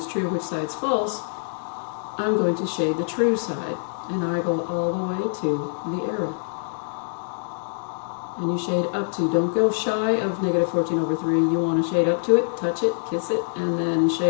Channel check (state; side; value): silent; right; digital silence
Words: true, which side's false, I'm going to shade the true side, and I go all the way to the arrow. And you shade up to, don't go shy of -14/3, you want to shade up to it, touch it, kiss it, and then